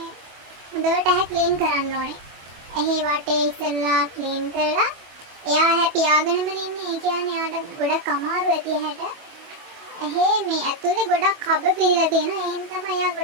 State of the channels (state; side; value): late; left; 24 ms